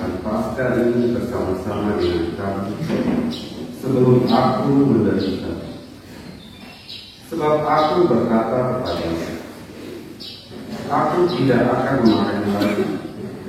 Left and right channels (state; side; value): identical; both; correlation 1.00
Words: Paskah ini bersama-sama dengan kamu sebelum aku menderita. Sebab aku berkata kepadamu, aku tidak akan makan lagi